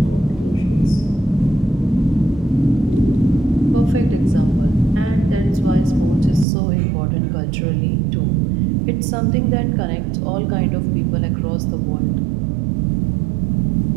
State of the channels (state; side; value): drops out; left; at 6.5 s